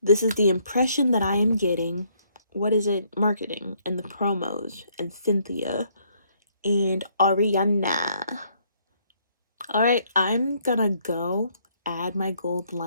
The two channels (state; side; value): inverted; both; correlation -0.68